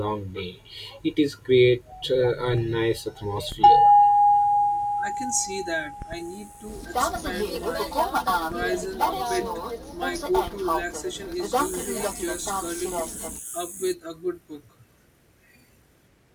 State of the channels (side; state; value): both; identical; correlation 1.00